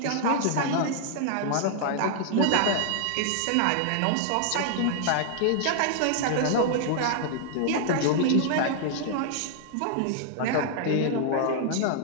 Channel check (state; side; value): different; both; correlation -0.01